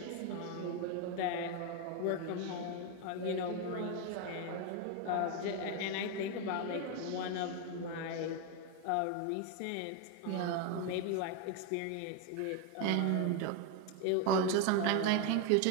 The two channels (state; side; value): different; both; correlation 0.01